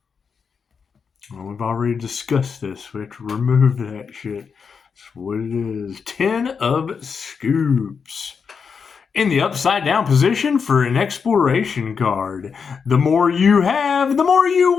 Well, we've already discussed this. We have to remove that shit. That's what it is. 10 of scoops. In the upside down position for an exploration card. The more you have, the more you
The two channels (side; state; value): right; quieter; 6.0 dB